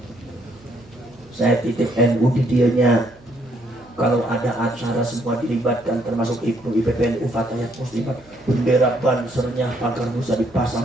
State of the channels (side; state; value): right; noise; hum, 28 dB below the sound